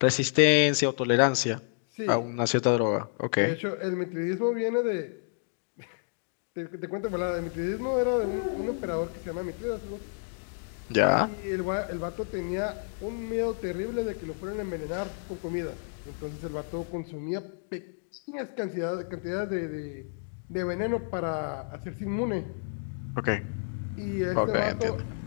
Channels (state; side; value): silent; right; digital silence